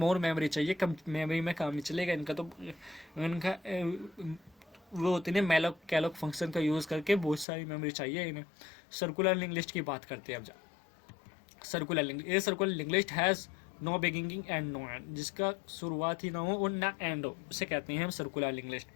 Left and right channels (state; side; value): drops out; right; at 7.5 s